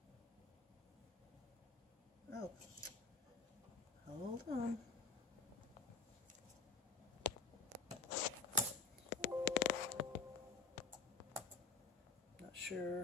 Oh, hold on. Not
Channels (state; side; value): quieter; right; 4.4 dB